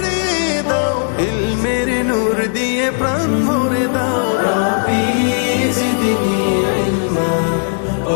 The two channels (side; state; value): right; silent; digital silence